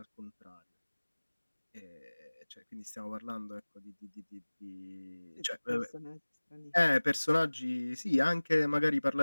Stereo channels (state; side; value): inverted; both; correlation -1.00